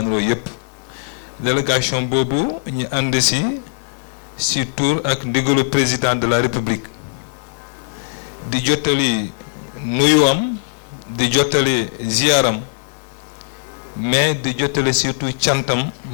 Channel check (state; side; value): silent; right; 57 dB below the other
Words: yépp. Délégation boobu ñu ànd ci tour ak ndigalu président de la République di jottali nuyuwam, di jottali ziaram, mais di jottali surtout cantam